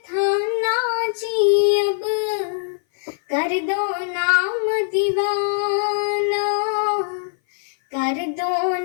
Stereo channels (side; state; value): right; silent; 59 dB below the other